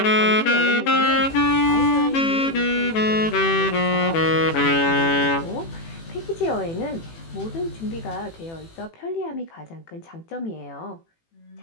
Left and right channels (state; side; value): late; right; 18 ms